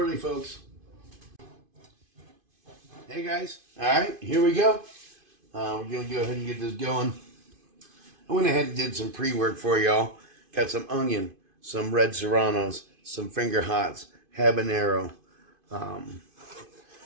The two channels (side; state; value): left; late; 2.5 ms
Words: folks. Hey guys, alright, here we go. We're going to go ahead and get this going. I went ahead and did some pre-work for y'all. Got some onion, some red serranos, some finger hots, habanero,